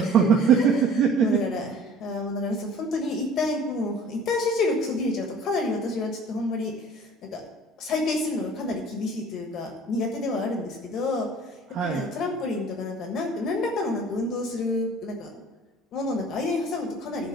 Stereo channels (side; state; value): both; normal; correlation 0.47